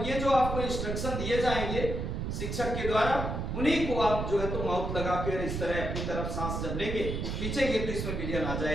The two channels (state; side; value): noise; right; rumble, 3 dB below the sound